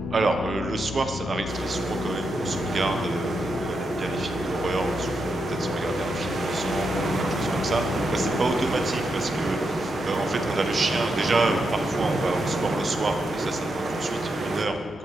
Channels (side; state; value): both; normal; correlation 0.84